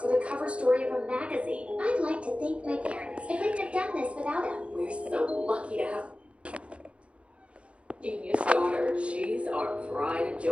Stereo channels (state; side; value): late; left; 0.061 ms